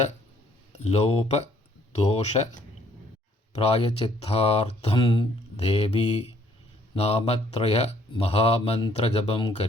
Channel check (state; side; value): normal; both; correlation 0.63